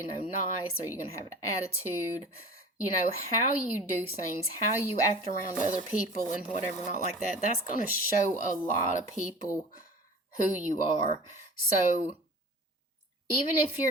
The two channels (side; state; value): both; normal; correlation 0.40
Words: nice? Are you going to have an attitude? How you do things, how you act around other people and whatever, not like that. That's going to show a lot of people who you are. So even if